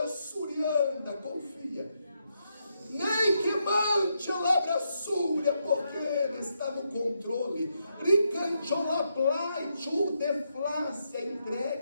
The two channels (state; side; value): inverted; both; correlation -0.81